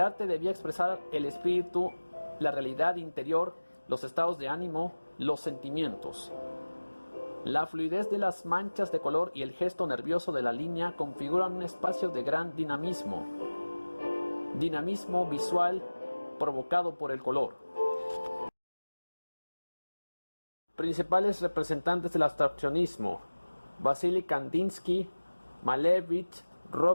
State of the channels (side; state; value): both; inverted; correlation -1.00